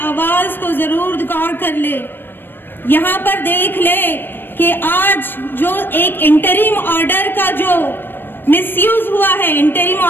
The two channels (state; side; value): late; right; 0.096 ms